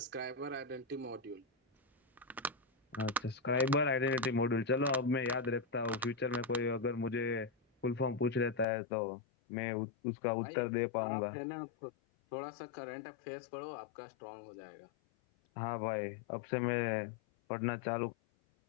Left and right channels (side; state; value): right; drops out; at 8.7 s